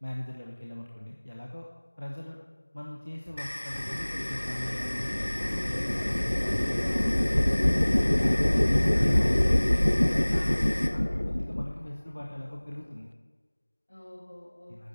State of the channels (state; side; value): inverted; both; correlation -1.00